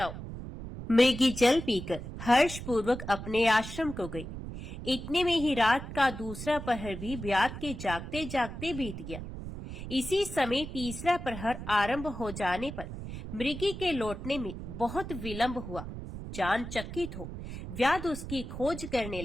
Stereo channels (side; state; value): right; noise; rumble, 9 dB below the sound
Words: मृगी जल पीकर हर्षपूर्वक अपने आश्रम को गई। इतने में ही रात का दूसरा प्रहर भी व्याध के जागते जागते बीत गया। इसी समय तीसरा प्रहर आरंभ हो जाने पर मृगी के लौटने में बहुत विलंब हुआ। जान चकित हो व्याध उसकी खोज करने